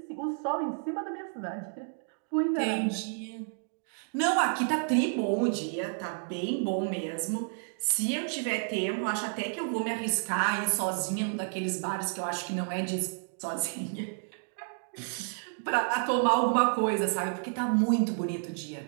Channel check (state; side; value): silent; left; 57 dB below the other